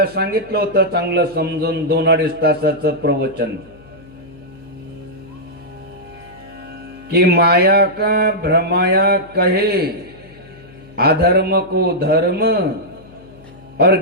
सांगितलं होतं चांगलं समजून 2-2.5 तासाचं प्रवचन कि माया का भ्रमाया कहे अधर्म को धर्म और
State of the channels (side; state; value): left; noise; hum, 23 dB below the sound